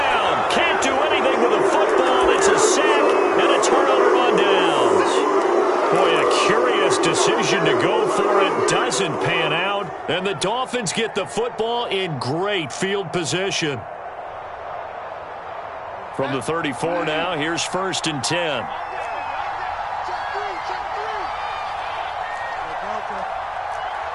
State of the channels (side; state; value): both; identical; correlation 1.00